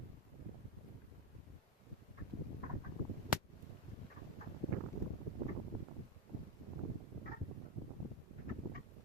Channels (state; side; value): normal; both; correlation 0.08